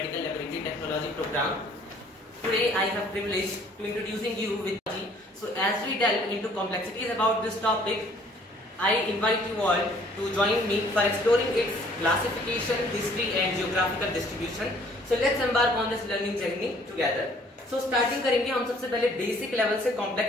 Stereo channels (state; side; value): normal; both; correlation 0.58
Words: Laboratory Technology program. Today I have privilege to introducing you with technology. So as we delve into complexities about this topic, I invite you all to join me for exploring its classification, history and geographical distribution. So let's embark on this learning journey together. So starting करेंगे हम सबसे पहले basic level से